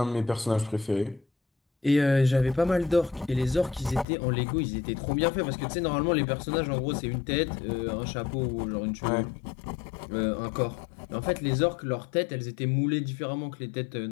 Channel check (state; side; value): drops out; right; at 4.0 s